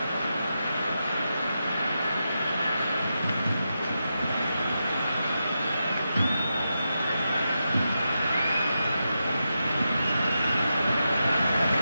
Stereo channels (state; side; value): inverted; both; correlation -0.88